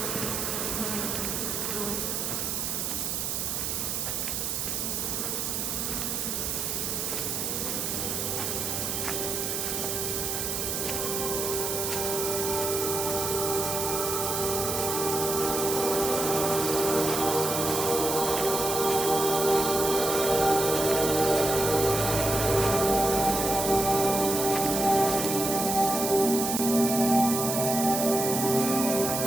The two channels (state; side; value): noise; right; hiss, 1 dB below the sound